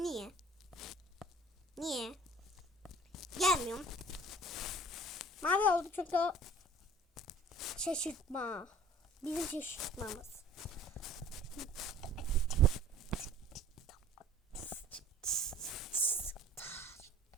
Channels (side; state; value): both; normal; correlation 0.48